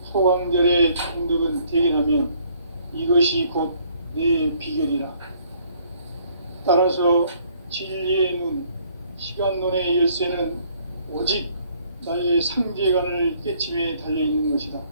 소강절의 정덕은 대견하며 이것이 곧 내 비결이라. 따라서 진리의 눈, 시간론의 열쇠는 오직 나의 상제관을 깨침에 달려있는 것이다.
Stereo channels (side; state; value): both; inverted; correlation -0.63